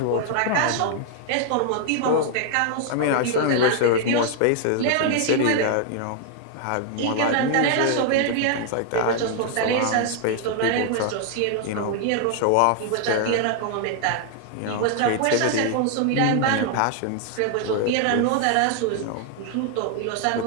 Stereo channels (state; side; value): different; both; correlation 0.00